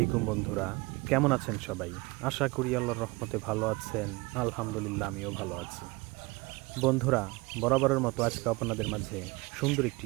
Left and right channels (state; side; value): quieter; left; 24.3 dB